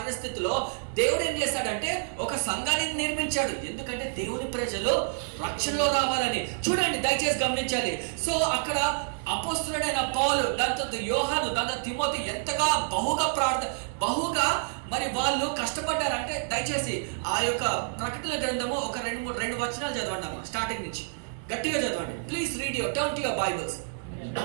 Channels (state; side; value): silent; left; digital silence